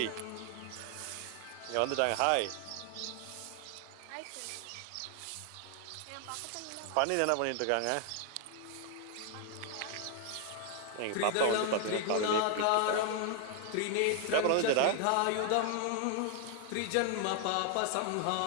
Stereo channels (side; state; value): both; different; correlation 0.00